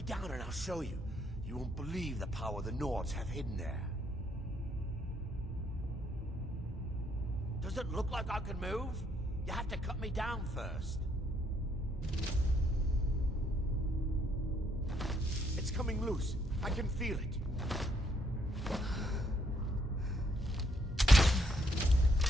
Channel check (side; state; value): both; normal; correlation 0.71